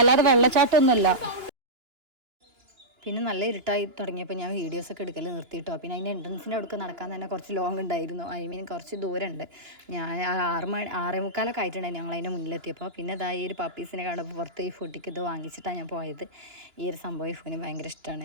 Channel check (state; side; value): late; left; 2.9 ms